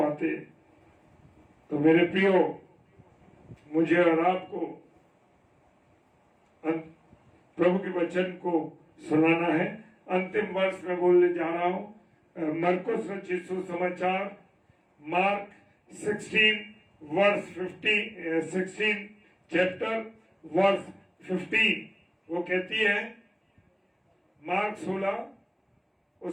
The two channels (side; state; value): both; identical; correlation 1.00